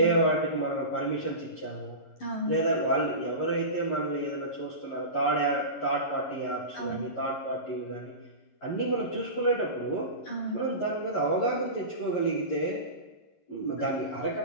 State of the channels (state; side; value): late; right; 11 ms